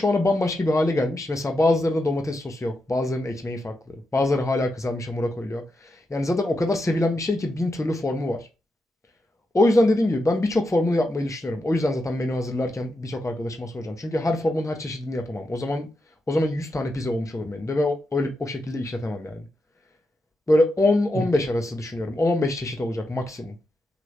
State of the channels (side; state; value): both; normal; correlation 0.86